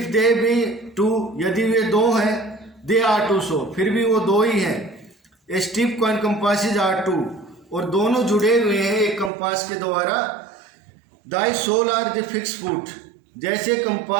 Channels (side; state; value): left; drops out; at 9.3 s